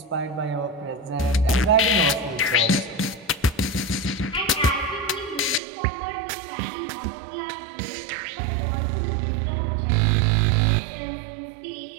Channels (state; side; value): drops out; left; at 5.6 s